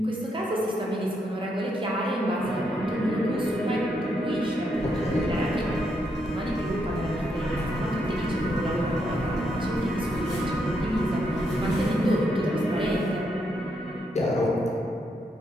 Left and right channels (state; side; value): normal; both; correlation 0.78